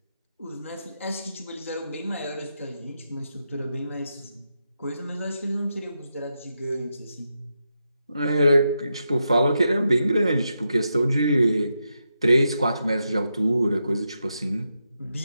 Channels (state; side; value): inverted; both; correlation -0.85